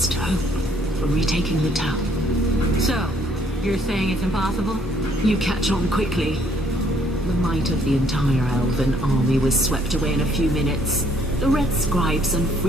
hope for retaking the town. So, you're saying it's impossible? You catch on quickly. The might of the entire elven army was swept away in a few minutes. The red scribes and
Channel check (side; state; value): both; normal; correlation 0.65